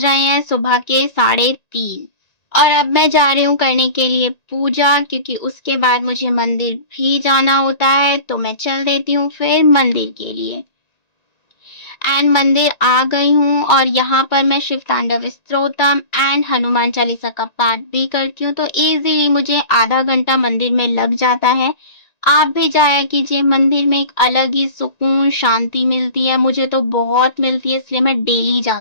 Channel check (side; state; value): right; late; 1.9 ms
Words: हैं सुबह के 3:30 और अब मैं जा रही हूँ करने के लिए पूजा, क्योंकि उसके बाद मुझे मंदिर भी जाना होता है। तो मैं चल देती हूँ फिर मंदिर के लिए। एंड मंदिर आ गई हूँ और यहाँ पर मैं शिव तांडव स्तोत्रम एंड हनुमान चालीसा का पाठ भी करती हूँ। तो इजीली मुझे आधा घंटा मंदिर में लग जाता है। आप भी जाया कीजिए, मंदिर में एक अलग ही सुकून शांति मिलती है, मुझे तो बहुत मिलती है, इसलिए मैं डेली